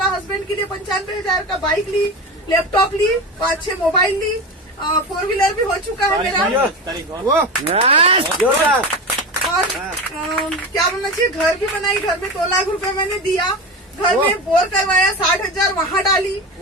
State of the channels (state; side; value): normal; both; correlation 0.24